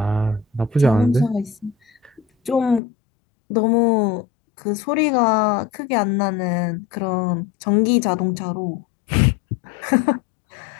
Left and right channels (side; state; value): right; drops out; at 2.8 s